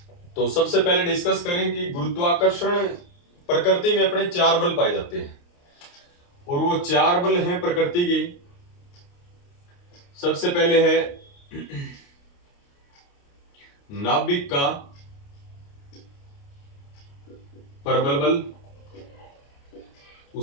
तो सबसे पहले डिस्कस करें कि गुरुत्वाकर्षण प्रकृति में अपने 4 बल पाए जाते हैं और वो 4 बल हैं प्रकृति के। सबसे पहले है नाभिक का प्रबल बल,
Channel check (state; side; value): late; right; 29 ms